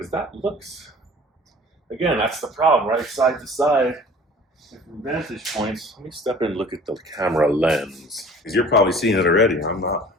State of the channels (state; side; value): normal; both; correlation 0.46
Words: that looks, again, that's the problem, right? Side to side, different vantage points. Let me step in and look at the camera lens because you're probably seeing it already. I'm not.